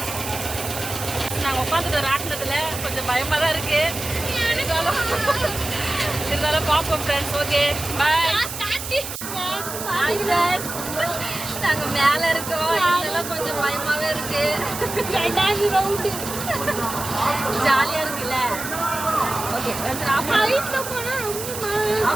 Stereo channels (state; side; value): noise; right; hiss, 8 dB below the sound